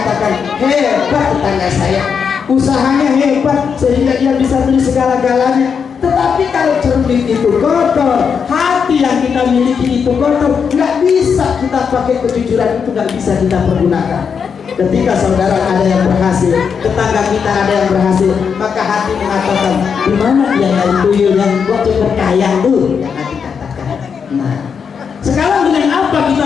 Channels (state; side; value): quieter; right; 6.5 dB